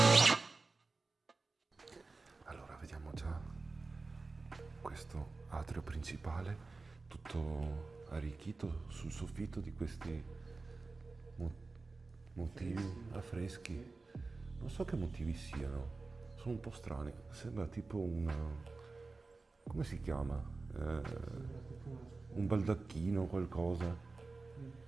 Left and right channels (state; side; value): quieter; left; 3.8 dB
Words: Allora, vediamo già questo atrio principale, tutto arricchito sul soffitto di questi motivi affreschi. Non so che motivi siano, sono un po' strani. Sembra tipo come si chiama? Un baldacchino o qualcosa.